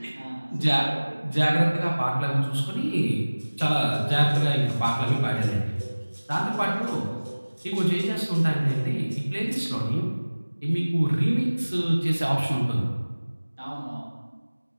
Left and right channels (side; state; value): both; inverted; correlation -1.00